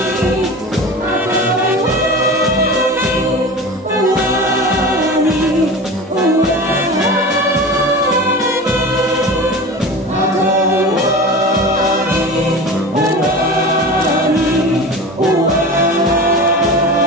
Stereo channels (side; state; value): both; normal; correlation 0.31